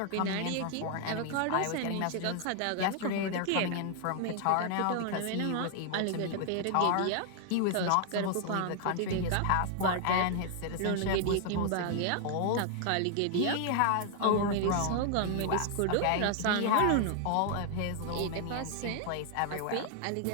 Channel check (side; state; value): both; different; correlation 0.00